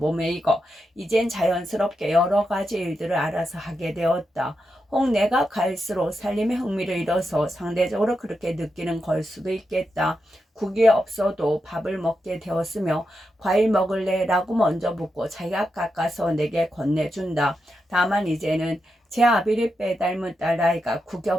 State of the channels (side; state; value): both; normal; correlation 0.86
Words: 익어 이젠 자연스럽게 여러 가지 일들을 알아서 하게 되었다. 혹 내가 갈수록 살림에 흥미를 잃어서 상대적으로 그렇게 느끼는 걸 수도 있겠다. 국이 없어도 밥을 먹게 되었으며 과일 먹을래? 라고 먼저 묻고 자기가 깎아서 내게 건네준다. 다만 이제는 제 아비를 빼닮은 딸아이가 국이